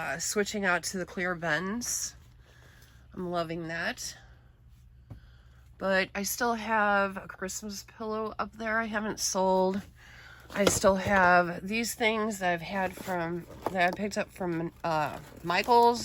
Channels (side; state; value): both; identical; correlation 1.00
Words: switching out to the clear bends. I'm loving that. But I still have a Christmas pillow up there I haven't sold. I still have these things that I've had that I picked up from